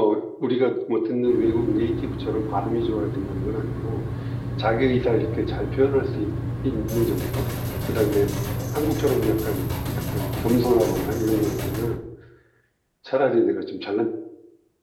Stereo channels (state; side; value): identical; both; correlation 1.00